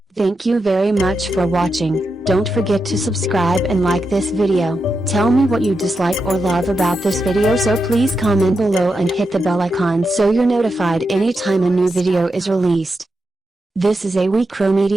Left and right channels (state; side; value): normal; both; correlation 0.87